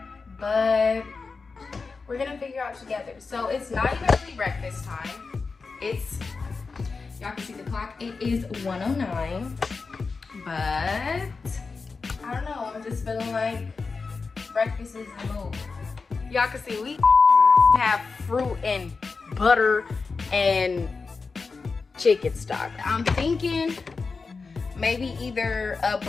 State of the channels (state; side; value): quieter; right; 4.5 dB